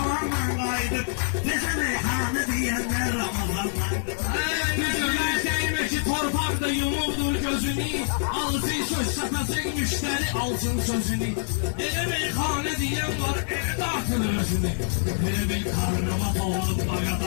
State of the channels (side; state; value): right; silent; 57 dB below the other